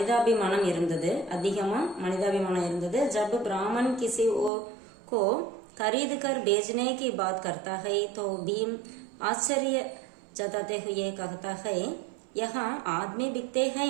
இருந்தது, அதிகமா மனிதாபிமானம் இருந்தது. ஜப் பிராமன் கிசி को खरीद कर बेचने की बात करता है तो भीम आश्चर्य जताते हुए कहता है यहाँ आदमी बिकते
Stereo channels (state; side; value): drops out; left; at 4.5 s